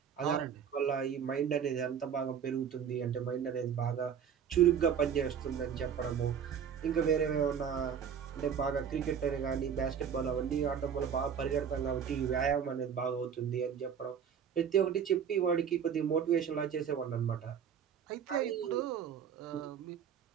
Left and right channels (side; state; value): left; quieter; 7.8 dB